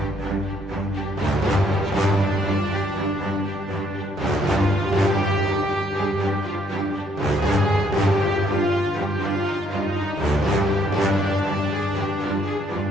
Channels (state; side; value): normal; both; correlation 0.68